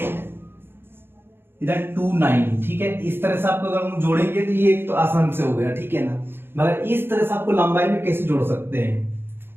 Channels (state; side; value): late; left; 0.11 ms